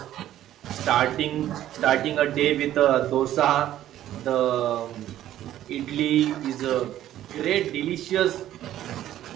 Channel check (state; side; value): quieter; left; 12.6 dB